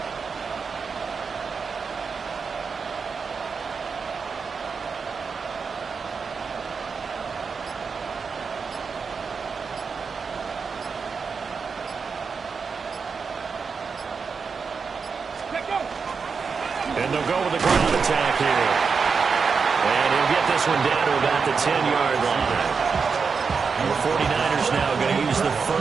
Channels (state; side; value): quieter; left; 5.4 dB